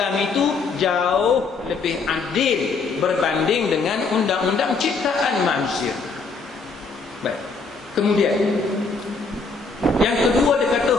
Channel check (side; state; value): right; quieter; 4.3 dB